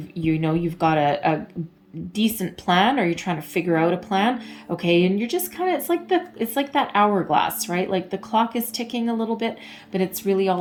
got a decent plan, or you're trying to figure out a plan, okay? And you're just kind of, it's like that hourglass, right? Like the clock is ticking a little bit, but it's really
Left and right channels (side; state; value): both; identical; correlation 1.00